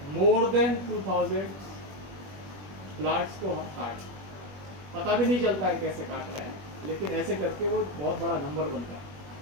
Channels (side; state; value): left; late; 21 ms